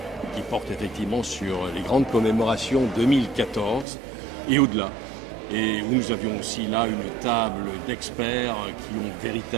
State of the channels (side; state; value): left; drops out; at 3.9 s